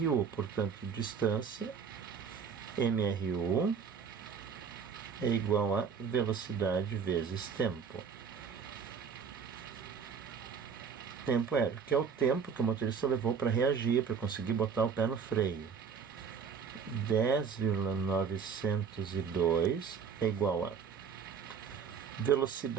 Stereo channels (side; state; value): left; quieter; 6.4 dB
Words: portanto, distância MRU é igual a velocidade vezes tempo. Tempo aéreo, que é o tempo que o motorista levou para reagir, para conseguir botar o pé no freio. 10,902 é igual a